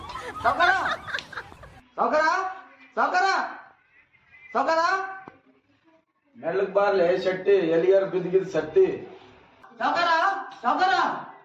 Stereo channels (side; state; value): both; identical; correlation 1.00